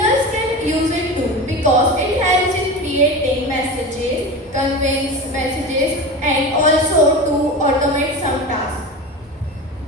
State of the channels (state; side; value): normal; both; correlation 0.28